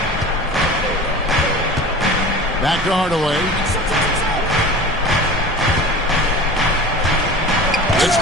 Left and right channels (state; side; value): normal; both; correlation 0.37